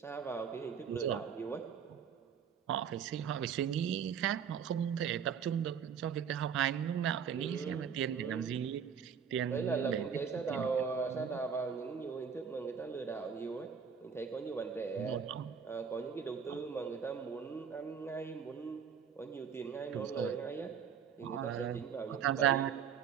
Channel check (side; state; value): left; quieter; 7.2 dB